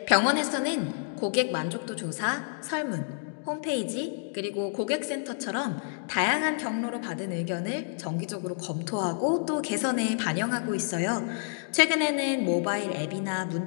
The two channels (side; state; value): right; silent; digital silence